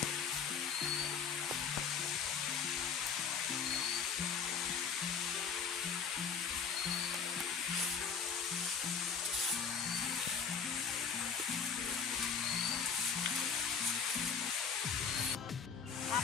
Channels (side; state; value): right; quieter; 6.3 dB